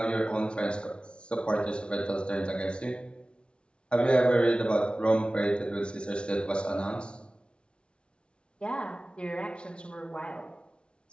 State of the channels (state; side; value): late; right; 0.057 ms